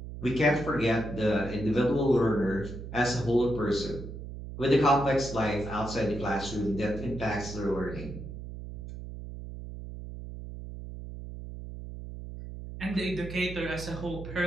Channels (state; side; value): noise; right; hum, 10 dB below the sound